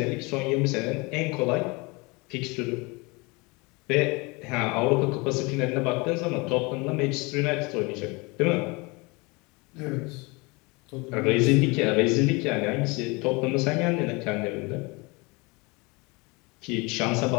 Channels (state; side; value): quieter; right; 26.8 dB